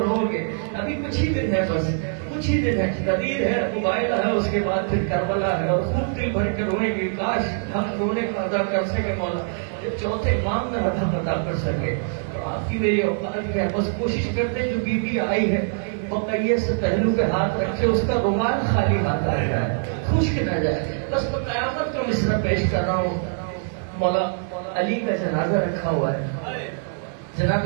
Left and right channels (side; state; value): left; silent; digital silence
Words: رو گے۔ ابھی کچھ ہی دن ہے، بس کچھ ہی دن ہے، غدیر ہے، مبائلہ ہے، اس کے بعد پھر کربلا ہے، اور خوب دل بھر کے روئیں گے، کاش ہم رونے کا ادا کر سکے مولا، جب چوتھے امام میں رحمت ادا کر سکے۔ تو آپ کی میری اوقات ہے، بس کوشش کرتے ہیں جو بی بی آئی ہے بقیہ سے پہلو پہ ہاتھ رکھے، اس کا رومال خالی ہاتھ آ جائے، خشک نہ جائے۔ بس میں قیامت کا مصرع پیش کر رہا ہوں، مولا علی کا جنازہ رکھا ہوا ہے. جناب